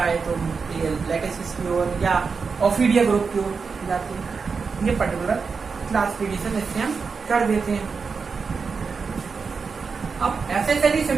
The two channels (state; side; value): quieter; left; 5.2 dB